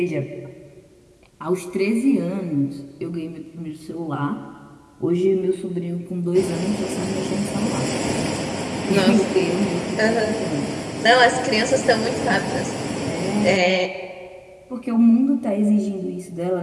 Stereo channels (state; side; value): identical; both; correlation 1.00